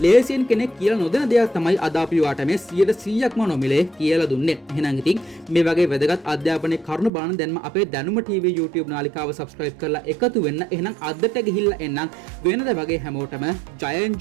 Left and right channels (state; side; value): drops out; left; at 7.1 s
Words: ලේසියෙන් කෙනෙක් කියලා නොදෙන දෙයක් තමයි අද අපි ඔයාට මේ 100%ක්ම නොමිලේ කියලා දුන්නේ. එහෙනම් ඉතින් මේ වගේ වැදගත් අධ්‍යාපනයේ කරුණු බලන දැන්ම අපේ දැනුම TV YouTube නාලිකාව subscribe කරලා එකතු වෙන්න. එහෙනම් අදට ගිහිල්ලා එන්නම් වෙනද වගේ හැමෝටම